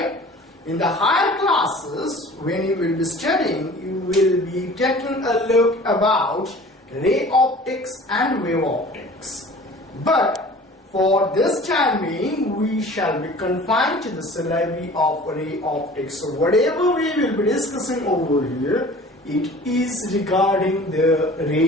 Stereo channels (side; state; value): both; normal; correlation 0.45